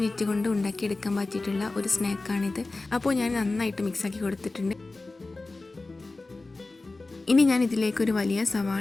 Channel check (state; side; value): quieter; right; 3.3 dB